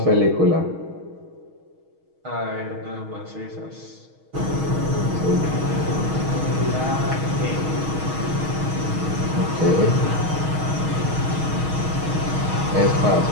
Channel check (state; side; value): late; left; 6.3 ms